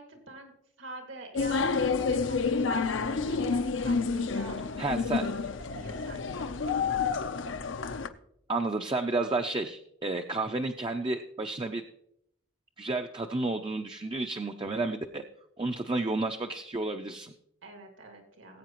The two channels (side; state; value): both; normal; correlation 0.33